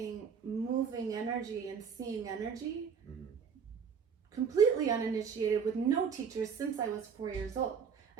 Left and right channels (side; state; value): left; quieter; 6.6 dB